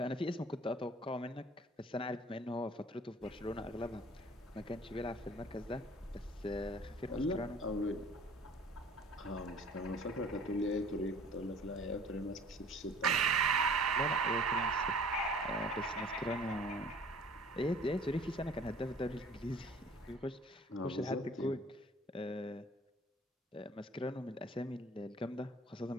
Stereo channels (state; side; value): normal; both; correlation 0.49